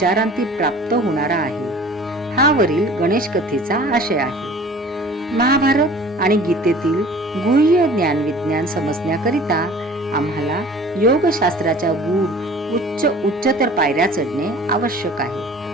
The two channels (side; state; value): both; normal; correlation 0.45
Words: प्राप्त होणारा आहे. हा वरील गणेश कथेचा आशय आहे. महाभारत आणि गीतेतील गुह्य ज्ञान विज्ञान समजण्याकरिता आम्हाला योगशास्त्राच्या गूढ उच्चतर पायऱ्या चढणे आवश्यक आहे.